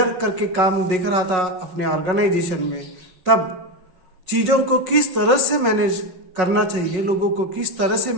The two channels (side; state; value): left; late; 5.5 ms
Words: करके काम देख रहा था अपने ऑर्गेनाइजेशन में तब चीज़ों को किस तरह से मैनेज करना चाहिए, लोगों को किस तरह से